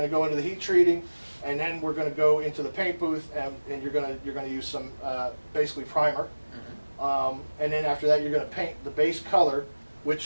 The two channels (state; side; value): inverted; both; correlation -1.00